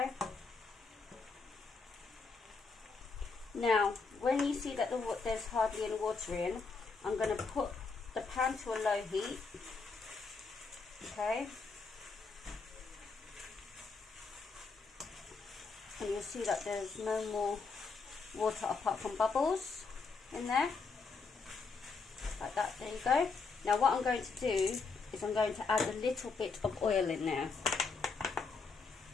Now, when you see that there's hardly any water in, I'm going to put the pan to a low heat. Okay. And you'll see that there's no more water apart from bubbles in there, like that. There you go. Now what I'm going to do is I'm going to add a little bit of oil in there.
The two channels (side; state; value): right; quieter; 4.5 dB